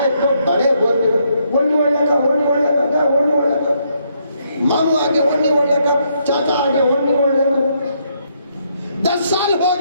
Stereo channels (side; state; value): both; inverted; correlation -0.74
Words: تو بڑے ہوتے ہونے والا کا ہونے والا کا ہونے والا کا، ماموں آگے ہونے والا کا، چاچا آگے ہونے والا کا، 10 سال ہو